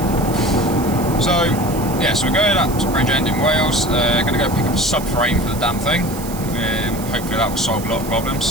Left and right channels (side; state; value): right; noise; hiss, 13 dB below the sound